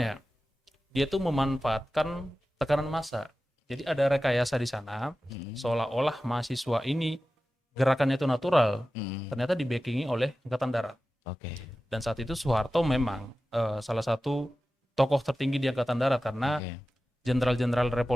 Dia tuh memanfaatkan tekanan massa. Jadi ada rekayasa di sana, seolah-olah mahasiswa ini gerakannya itu natural, ternyata di-backingi oleh Angkatan Darat. Oke. Dan saat itu Soeharto memang salah satu tokoh tertinggi di Angkatan Darat karena jenderal-jenderal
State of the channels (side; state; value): both; normal; correlation 0.95